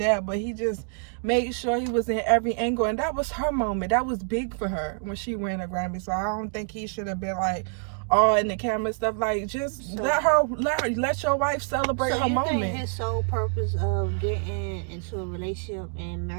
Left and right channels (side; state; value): left; silent; 55 dB below the other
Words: but he just made sure he was in every angle. And that was her moment. That was big for her when she won a Grammy. So I don't think he should have been like all in the camera stuff. Like, just let your wife celebrate her moment. So you think his sole purpose of getting into a relationship and